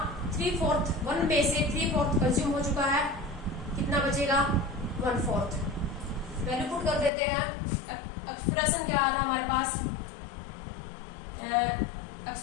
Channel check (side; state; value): right; drops out; at 7.1 s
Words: 3/4, 1 में से 3/4 कंज्यूम हो चुका है, कितना बचेगा? 1/4। वैल्यू पुट कर देते हैं। एक्सप्रेशन क्या आया था हमारे पास?